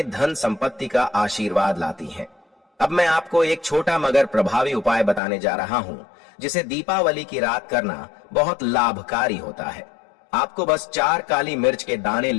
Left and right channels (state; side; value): drops out; right; at 5.2 s